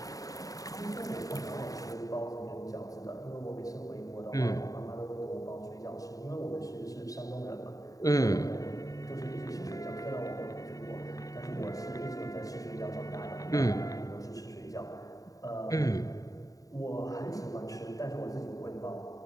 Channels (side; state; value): right; late; 0.17 ms